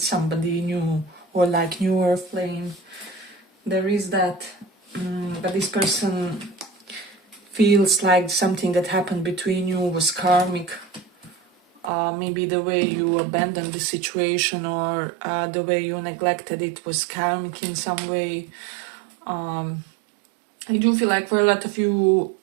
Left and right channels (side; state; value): left; drops out; at 11.9 s